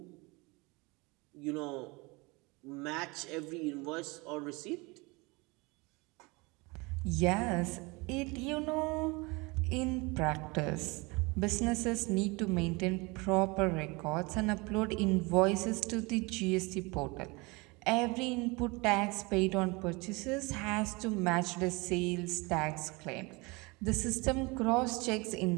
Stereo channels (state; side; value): quieter; left; 26.1 dB